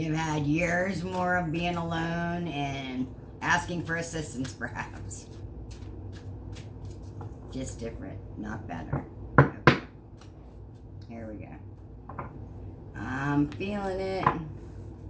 had years more of being alone and asking for assistance, perhaps. Just different, not better. Okay. Here we go. I'm feeling it.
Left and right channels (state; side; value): identical; both; correlation 1.00